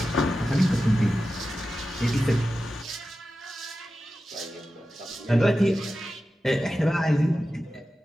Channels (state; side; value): normal; both; correlation 0.93